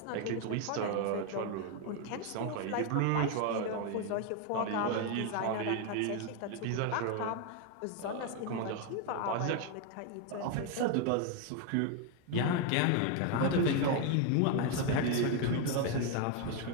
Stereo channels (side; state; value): both; different; correlation 0.01